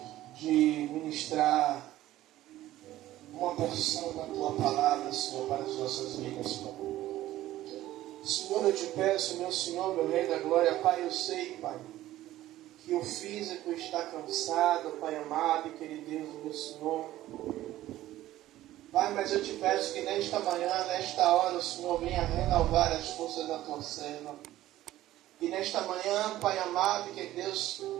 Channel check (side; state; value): left; quieter; 14.7 dB